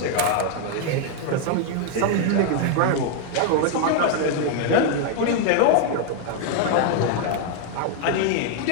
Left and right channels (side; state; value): both; different; correlation 0.00